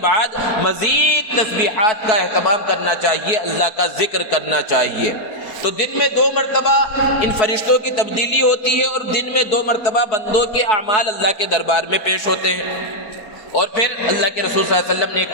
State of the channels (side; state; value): right; late; 4.3 ms